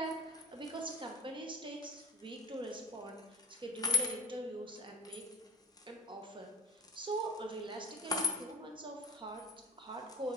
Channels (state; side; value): normal; both; correlation 0.41